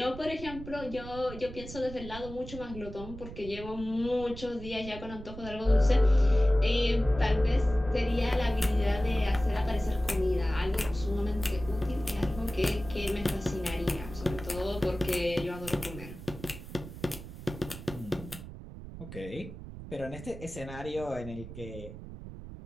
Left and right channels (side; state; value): right; noise; rumble, 12 dB below the sound